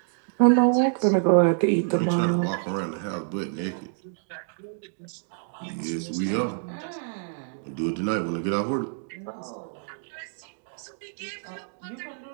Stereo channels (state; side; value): silent; left; digital silence